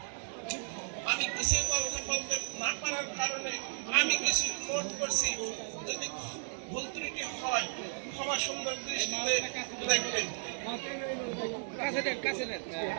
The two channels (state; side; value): silent; left; digital silence